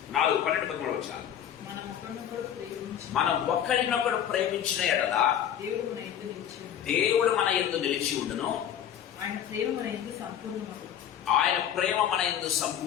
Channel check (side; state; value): right; quieter; 9.8 dB